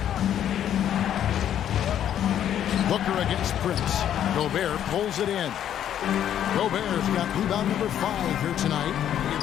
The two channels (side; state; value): right; quieter; 10.3 dB